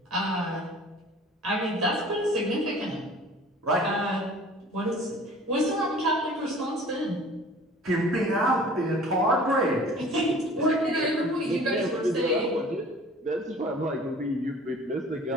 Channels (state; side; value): normal; both; correlation 0.47